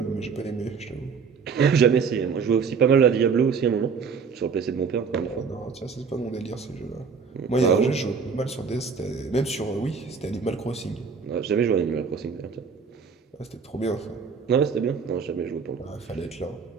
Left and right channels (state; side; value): quieter; left; 5.7 dB